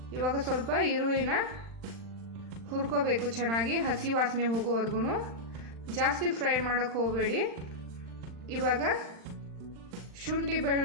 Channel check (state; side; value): late; left; 39 ms